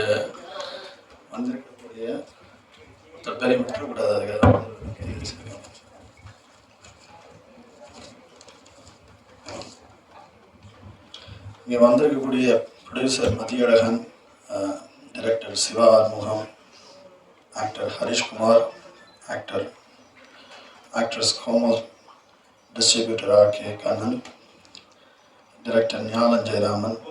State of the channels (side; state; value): both; identical; correlation 1.00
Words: வந்திருக்கக்கூடிய பேரை விட்டுறக்கூடாது. அதுக்காக இங்கே வந்திருக்கக்கூடிய producer Mathiyazhagan, director Siva Arumugam, actor Harishkumar, actress Komal, distributor R K. Kannan, director Gnanam Jayaraman